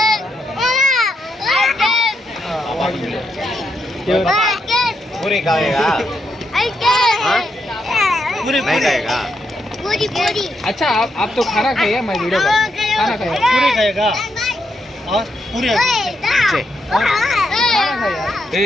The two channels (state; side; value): normal; both; correlation 0.81